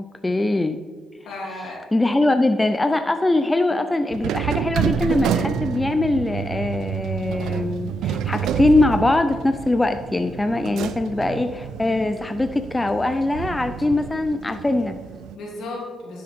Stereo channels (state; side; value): normal; both; correlation 0.86